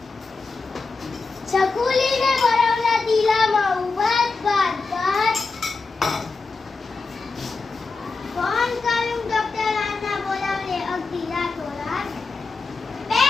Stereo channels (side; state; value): right; quieter; 4.1 dB